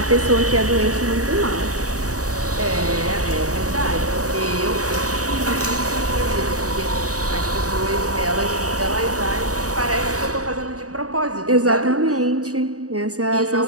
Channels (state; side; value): late; left; 0.66 ms